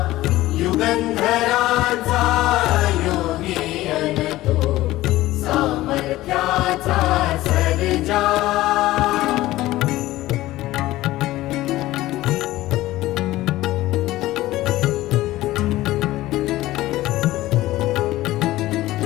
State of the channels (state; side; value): quieter; right; 16.6 dB